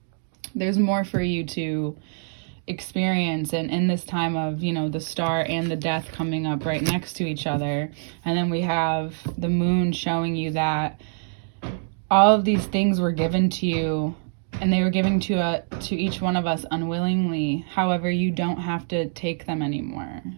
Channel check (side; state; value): left; silent; digital silence